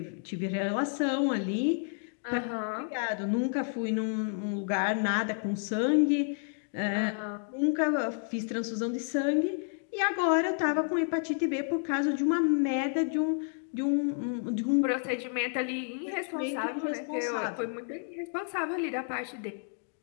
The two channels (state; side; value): silent; right; 57 dB below the other